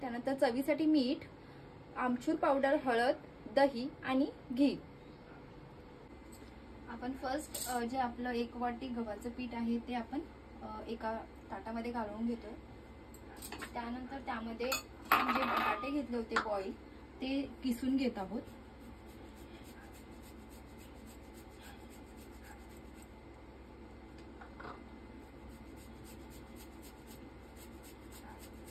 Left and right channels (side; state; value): both; identical; correlation 1.00